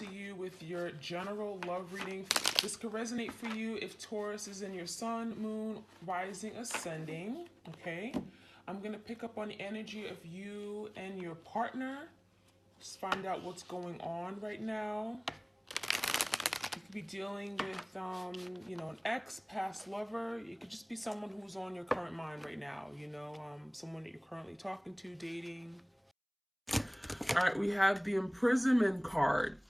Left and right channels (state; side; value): identical; both; correlation 1.00